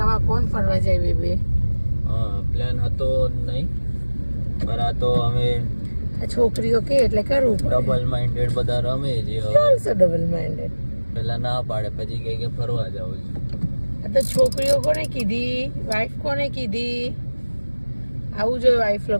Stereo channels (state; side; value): inverted; both; correlation -1.00